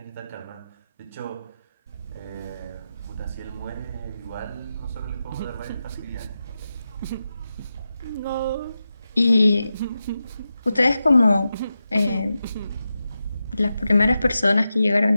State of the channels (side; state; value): both; inverted; correlation -0.91